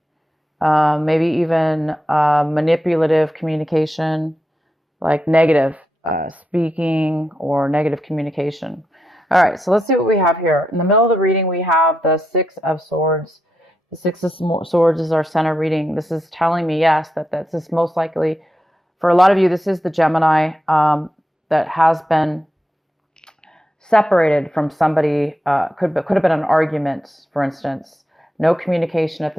maybe even manipulative communication, like negative speaking or negative communication. All right, so let's see what we have here. In the middle of the reading, we have the Six of Swords. The Six of Swords is our center reading. This is telling me, yes, that this is most likely, for a lot of you, this is the Gemini that has been separated from somebody. Could have been an argument, for instance. No communication at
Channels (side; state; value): both; normal; correlation 0.85